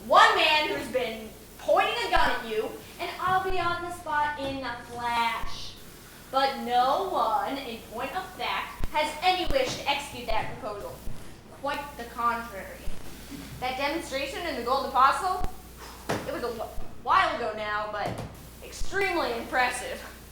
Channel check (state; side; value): identical; both; correlation 1.00